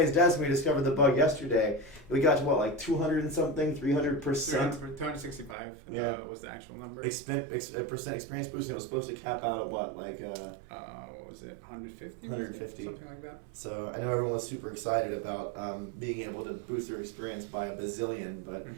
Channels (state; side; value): drops out; left; at 5.6 s